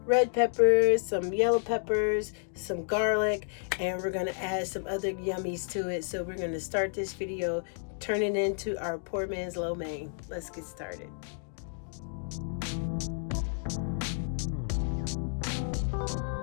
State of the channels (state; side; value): silent; right; digital silence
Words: red peppers, some yellow peppers, some garlic, and we're going to add some other yummies to it. So we're going to start this video turning into our poor man's lo mein. Let's get started.